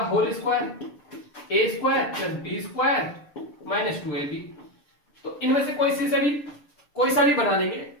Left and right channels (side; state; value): right; late; 6.7 ms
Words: whole square, a square plus B square minus 2ab। तो इनमें से कोई सा भी बना लेंगे।